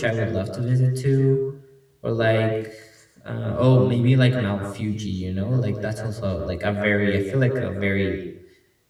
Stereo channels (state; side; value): identical; both; correlation 1.00